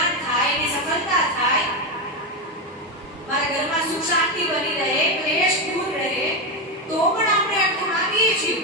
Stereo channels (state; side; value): normal; both; correlation 0.10